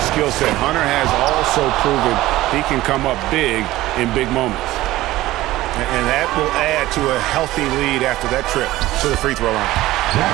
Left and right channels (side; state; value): left; quieter; 16.7 dB